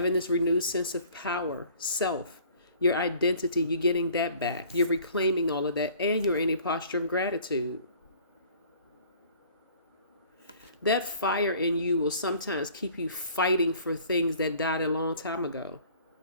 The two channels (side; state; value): both; inverted; correlation -0.52